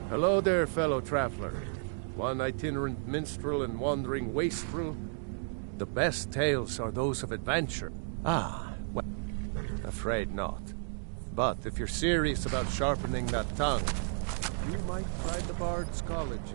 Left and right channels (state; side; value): silent; left; digital silence